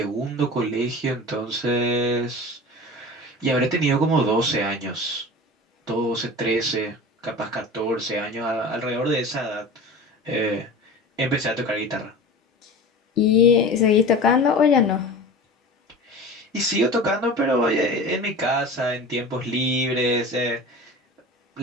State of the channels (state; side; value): normal; both; correlation 0.35